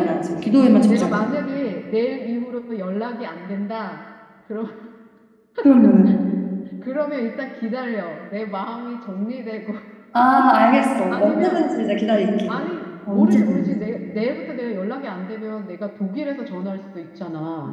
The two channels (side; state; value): both; identical; correlation 1.00